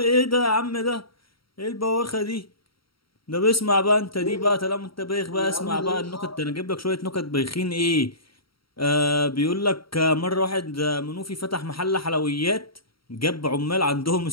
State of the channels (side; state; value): right; late; 0.74 ms